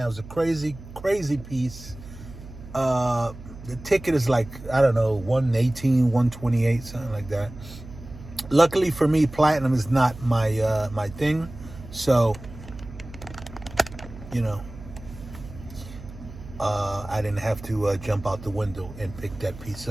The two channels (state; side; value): noise; right; hum, 15 dB below the sound